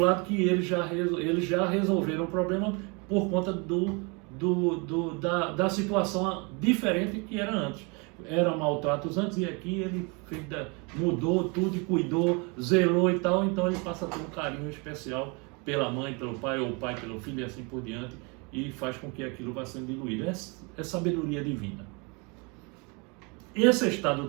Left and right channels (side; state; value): left; quieter; 31.1 dB